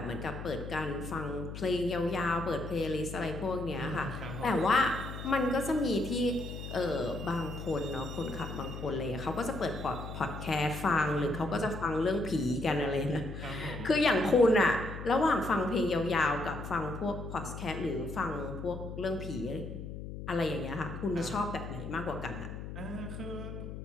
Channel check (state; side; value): noise; left; hum, 8 dB below the sound